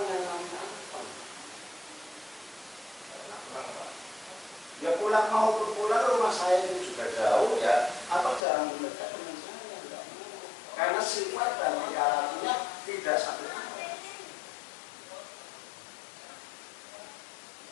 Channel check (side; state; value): right; drops out; at 8.4 s